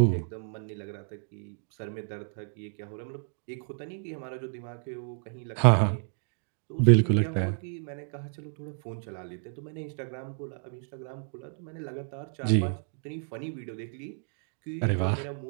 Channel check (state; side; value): silent; left; digital silence